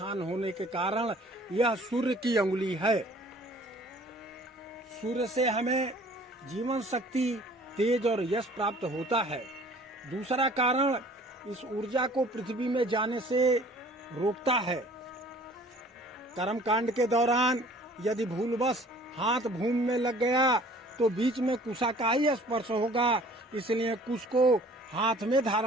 होने के कारण यह सूर्य की अंगुली है। सूर्य से हमें जीवन शक्ति, तेज और यश प्राप्त होता है। दूसरा कारण, इस ऊर्जा को पृथ्वी में जाने से रोकता है। कर्मकांड के दौरान यदि भूलवश हाथ भूमि में लग गया तो बीच में कुशा का ही स्पर्श होगा, इसलिए कुश को हाथ में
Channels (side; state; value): both; normal; correlation 0.52